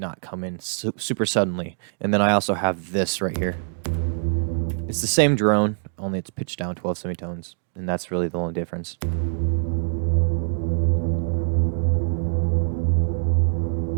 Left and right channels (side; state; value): left; silent; digital silence